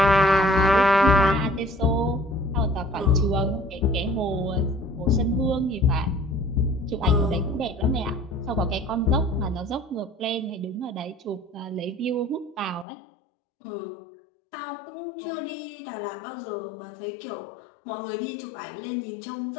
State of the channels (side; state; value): right; drops out; at 12.9 s